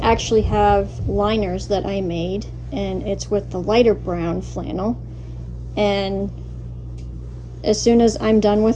actually have liners that I made, and it's with the lighter brown flannel, and as soon as I'm done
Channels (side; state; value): both; identical; correlation 1.00